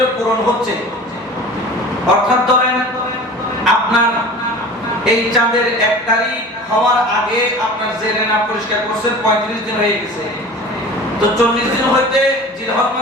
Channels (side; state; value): both; normal; correlation 0.39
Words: পূরণ হচ্ছে, অর্থাৎ ধরেন আপনার এই চাঁদের 1 তারিখ হওয়ার আগে আপনার জেরে নাফ পরিষ্কার করছেন, 35 দিন হয়ে গেছে। তো 40 দিন হইতে জিলহজ